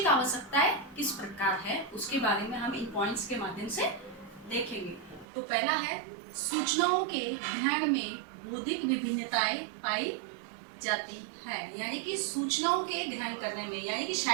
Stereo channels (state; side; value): drops out; left; at 5.2 s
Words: आवश्यकताएं किस प्रकार है, उसके बारे में हम इन पॉइंट्स के माध्यम से देखेंगे। तो पहला है, सूचनाओं के ग्रहण में बौद्धिक विभिन्नताएं पाई जाती है। यानी कि सूचनाओं के ग्रहण करने में, यानी कि